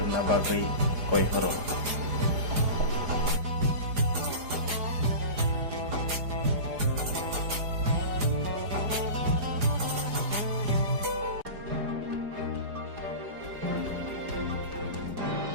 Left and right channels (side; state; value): left; late; 4.9 ms